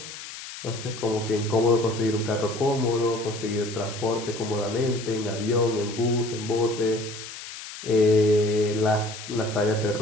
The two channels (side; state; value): left; noise; hiss, 12 dB below the sound